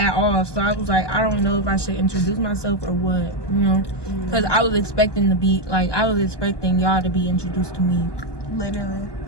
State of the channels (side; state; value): right; late; 1.2 ms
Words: all, so I was like, I don't know if I should introduce myself or what, you know, because I was expecting y'all to be introduced to me, literally.